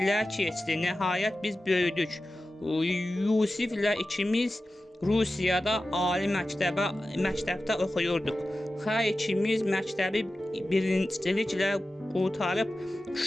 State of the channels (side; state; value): both; normal; correlation 0.94